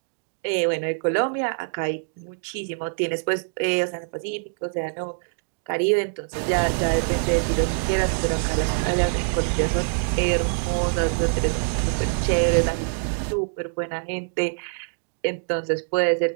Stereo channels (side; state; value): left; silent; digital silence